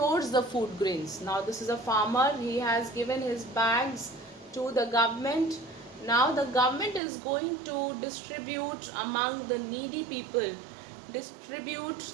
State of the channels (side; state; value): left; drops out; at 7.0 s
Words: the food grains. Now this is a farmer, he has given his bags to the government. Now the government is going to distribute among the needy people, distribute